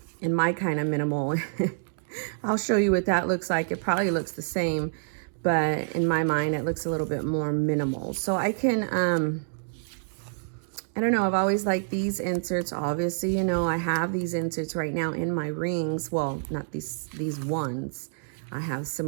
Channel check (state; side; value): silent; left; digital silence